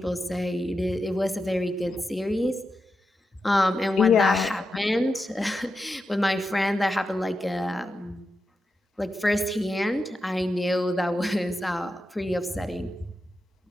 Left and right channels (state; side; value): normal; both; correlation 0.88